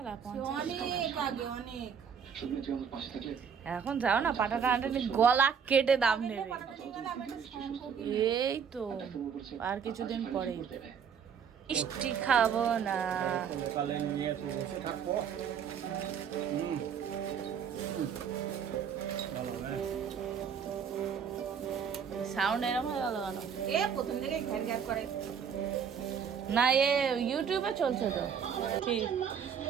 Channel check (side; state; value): left; quieter; 7.2 dB